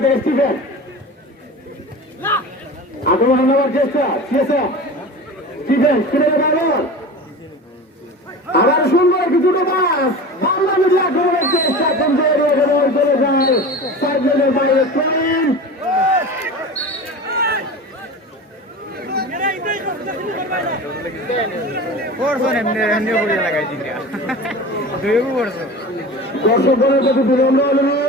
স্টিফেন আক্রমণ নেওয়ার চেষ্টা স্টিফেন আবার সুন্দর কিছুটা বাস বাংলা মিডিয়া আক্রমণের চেষ্টা কিন্তু চলে যায় সাইড লাইনের বাইরে দর্শকগণের প্রতি বিনম্র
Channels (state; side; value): normal; both; correlation 0.33